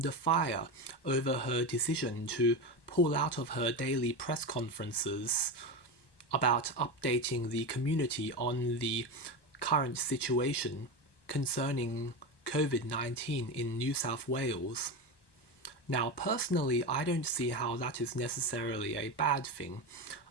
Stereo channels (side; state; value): right; late; 1.1 ms